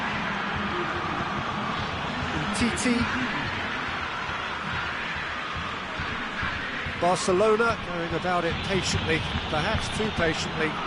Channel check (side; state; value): both; identical; correlation 1.00